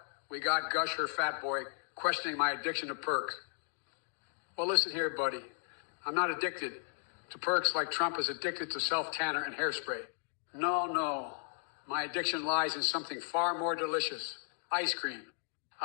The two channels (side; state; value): right; silent; 54 dB below the other